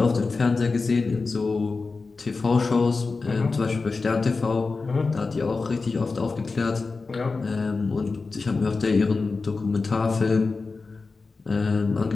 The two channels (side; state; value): right; quieter; 4.1 dB